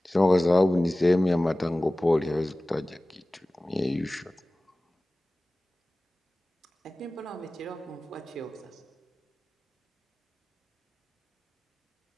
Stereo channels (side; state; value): both; normal; correlation 0.98